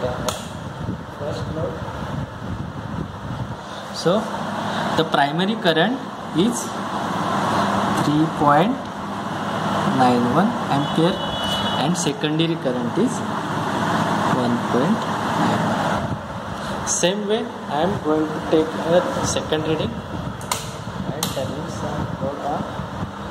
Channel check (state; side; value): identical; both; correlation 1.00